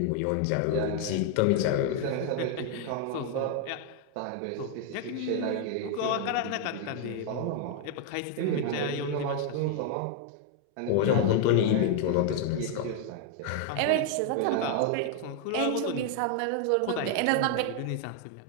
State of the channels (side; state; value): both; different; correlation 0.00